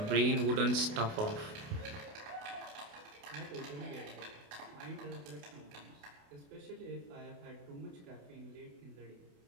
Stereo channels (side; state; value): left; late; 28 ms